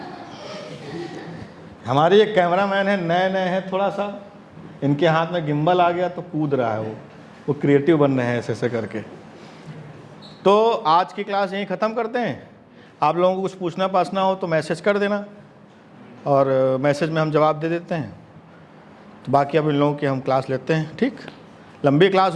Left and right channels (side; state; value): both; identical; correlation 1.00